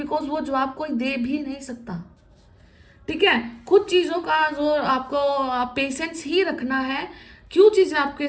वो जवाब कोई दे भी नहीं सकता, ठीक है। कुछ चीज़ों का जो आपको पेशेंस ही रखना है। क्यों चीज़ें आपके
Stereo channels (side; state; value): both; identical; correlation 1.00